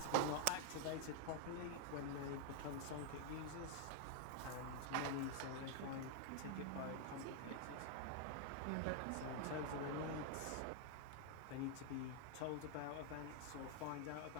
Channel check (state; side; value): different; both; correlation 0.00